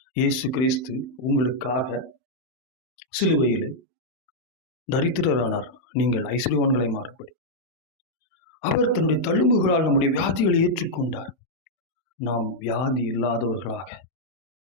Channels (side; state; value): right; late; 31 ms